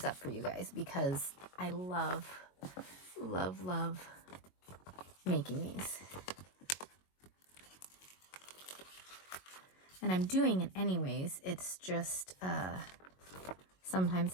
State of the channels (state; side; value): late; right; 22 ms